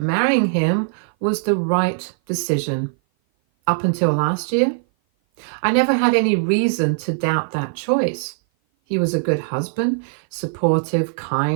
marrying him was the right decision. Up until last year, I never had any reason to doubt that choice. He was a good husband, supportive,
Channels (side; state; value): left; silent; 56 dB below the other